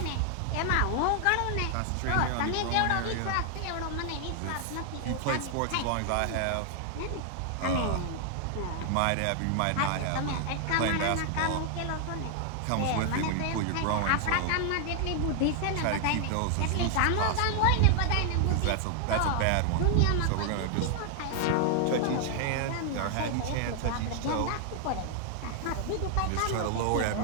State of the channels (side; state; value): both; different; correlation 0.00